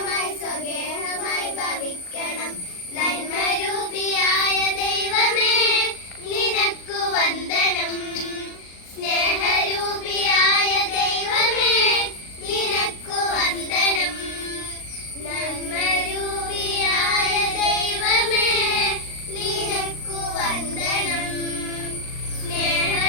സ്വഗേഹമായി ഭവിക്കണം, നന്മരൂപിയായ ദൈവമേ നിനക്കു വന്ദനം, സ്നേഹരൂപിയായ ദൈവമേ നിനക്കു വന്ദനം, നന്മരൂപിയായ ദൈവമേ നിനക്കു വന്ദനം,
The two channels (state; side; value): late; right; 38 ms